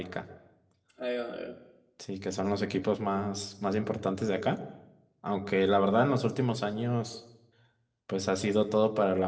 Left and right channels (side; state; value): both; identical; correlation 1.00